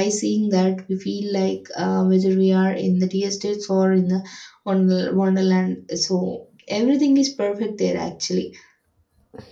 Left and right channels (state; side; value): identical; both; correlation 1.00